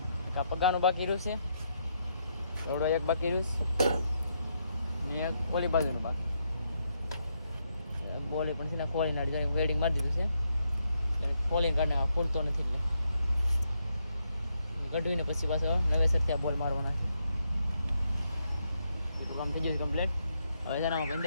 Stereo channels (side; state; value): both; inverted; correlation -0.79